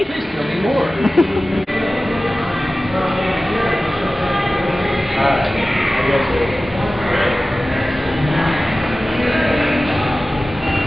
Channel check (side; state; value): both; normal; correlation 0.96